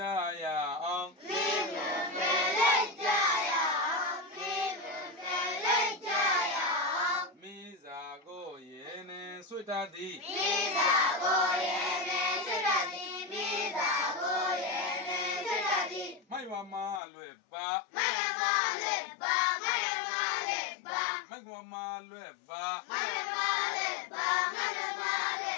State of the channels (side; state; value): right; drops out; at 17.0 s